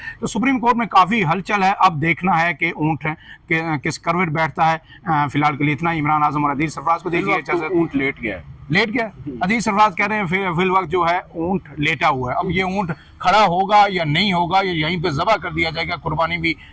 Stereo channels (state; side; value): identical; both; correlation 1.00